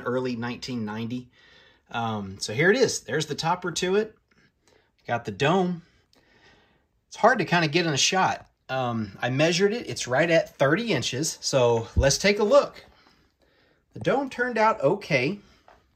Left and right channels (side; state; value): both; identical; correlation 1.00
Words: early 1990. So here it is. There's the topper to it. Got the dome. It's hard to kind of get in a shot. I measured it. It's right at 30 inches. So let's take a look. The dome turned out okay.